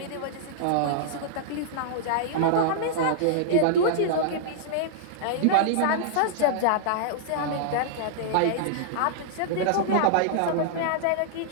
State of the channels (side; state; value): both; different; correlation -0.02